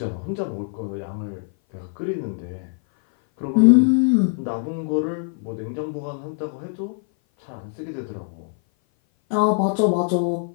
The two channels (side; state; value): right; silent; 57 dB below the other